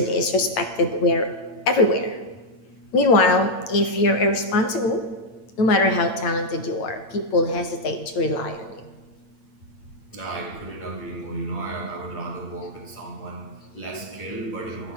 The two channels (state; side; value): late; right; 8.8 ms